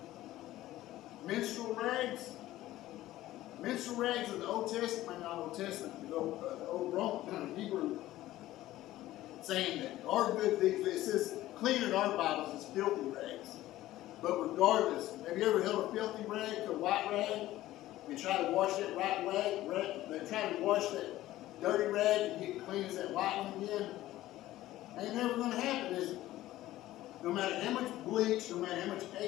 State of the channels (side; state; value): right; quieter; 15.4 dB